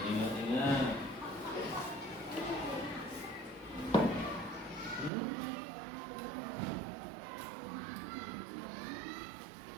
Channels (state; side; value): drops out; left; at 5.1 s